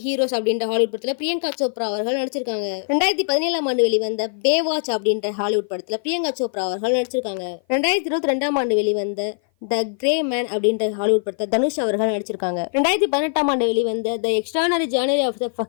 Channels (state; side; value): silent; right; 56 dB below the other